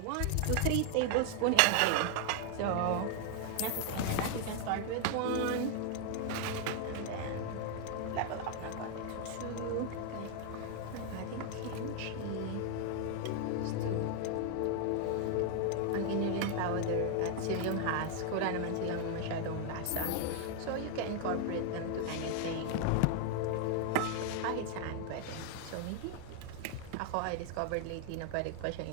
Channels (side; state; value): both; different; correlation 0.00